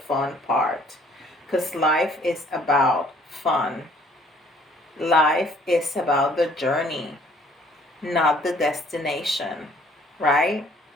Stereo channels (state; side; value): normal; both; correlation 0.59